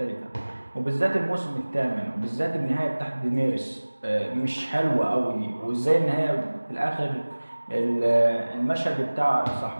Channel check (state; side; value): inverted; both; correlation -1.00